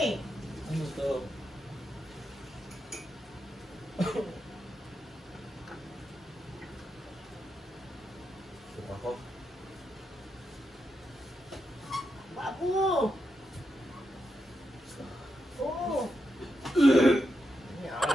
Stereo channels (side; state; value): both; normal; correlation 0.85